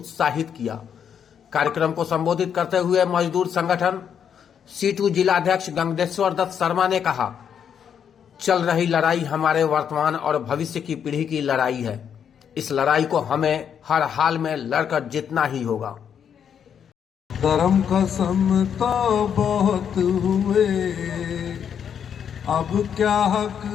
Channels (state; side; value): quieter; right; 8.1 dB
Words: किया। कार्यक्रम को संबोधित करते हुए मजदूर संगठन C2 जिला अध्यक्ष गंगेश्वर दत्त शर्मा ने कहा, चल रही लड़ाई हमारे वर्तमान और भविष्य की पीढ़ी की लड़ाई है। इस लड़ाई को हमें हर हाल में लड़कर जीतना ही होगा। धर्म कसम तो बहुत हुए, अब क्या हक